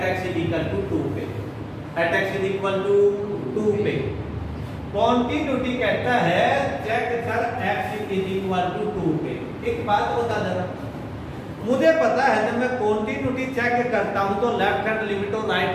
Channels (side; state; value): both; identical; correlation 1.00